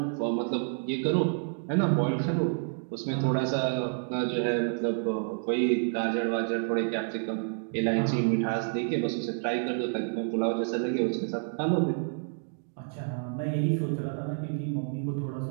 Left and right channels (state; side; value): silent; left; 58 dB below the other